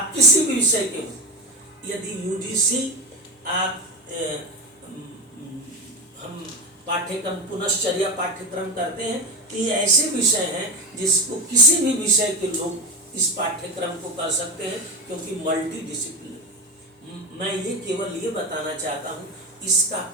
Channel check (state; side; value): normal; both; correlation 0.18